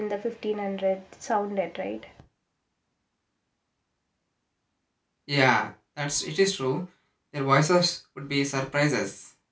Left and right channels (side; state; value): both; identical; correlation 1.00